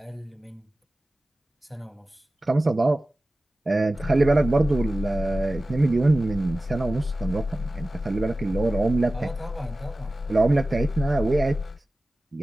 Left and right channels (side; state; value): both; normal; correlation 0.96